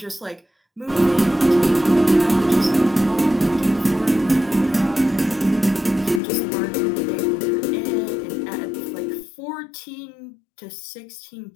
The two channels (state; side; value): drops out; right; at 6.2 s